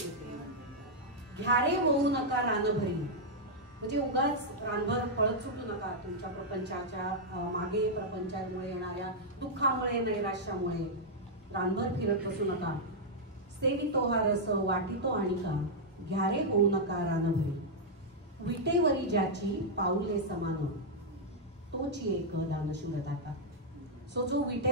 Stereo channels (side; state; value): both; normal; correlation -0.05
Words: ते घ्यारे होऊ नका रानभरी. म्हणजे उगाच रानभर पळत सुटू नका तुमच्या प्रपंचाच्या मागे, प्रपंचामुळे येणाऱ्या दुःखामुळे नैराश्यामुळे रानभर फिरत बसू नका. सेवितो हा रस वाटितो आणि का घ्यारे होऊ नका रानभरी. विटेवरी ज्याची पाऊले समान तोची एक दानशूर दाता. सो जो